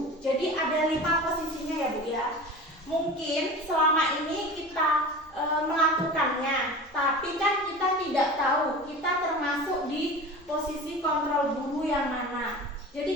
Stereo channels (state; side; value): normal; both; correlation 0.35